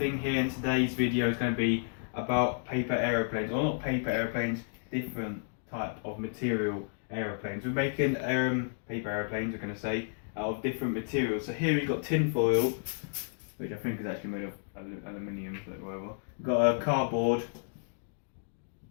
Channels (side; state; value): right; silent; digital silence